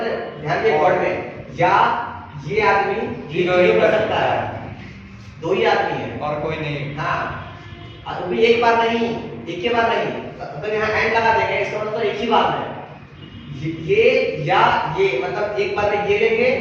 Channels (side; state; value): both; identical; correlation 1.00